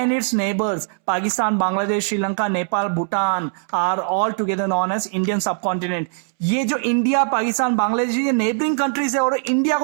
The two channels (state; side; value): silent; left; 65 dB below the other